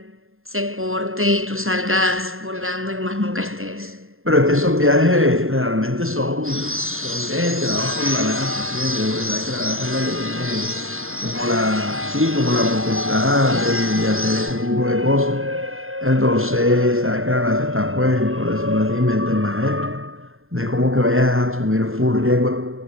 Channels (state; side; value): late; left; 0.61 ms